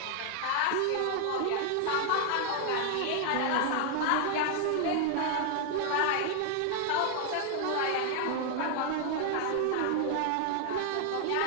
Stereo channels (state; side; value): different; both; correlation 0.00